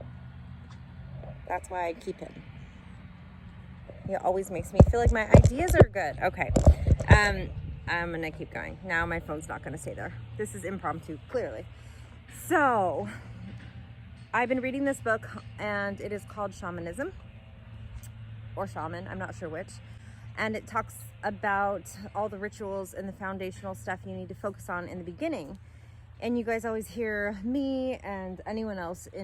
That's why I keep him. He always makes me feel like my ideas are good. Okay. I'm gonna keep going. Now my phone's not gonna stay there. This is impromptu, clearly. So, I've been reading this book and it is called Shamanism, or Shaman, I'm not sure which. And it talks about all the rituals and the foundational stuff you need to focus on in the beginning. And you guys always hear me and anyone else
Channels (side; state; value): both; identical; correlation 1.00